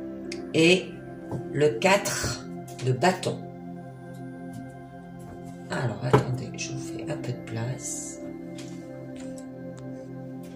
Et le 4 de bâton. Alors, attendez, je vous fais un peu de place.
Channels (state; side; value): identical; both; correlation 1.00